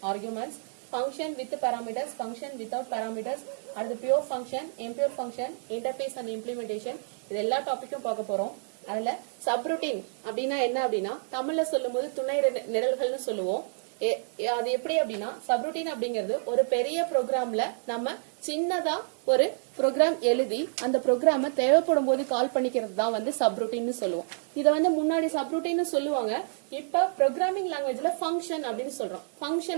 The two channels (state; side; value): silent; left; digital silence